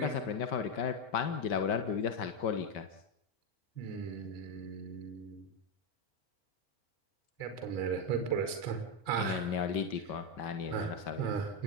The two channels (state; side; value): late; right; 4.9 ms